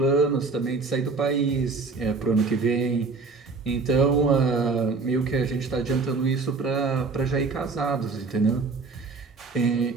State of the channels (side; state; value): left; quieter; 4.2 dB